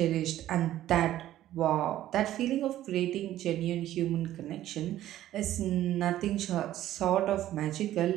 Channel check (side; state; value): left; quieter; 13.3 dB